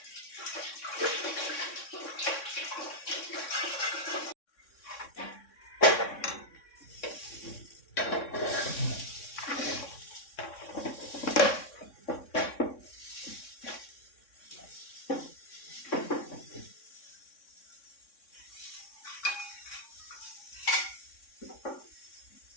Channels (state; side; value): late; right; 3.6 ms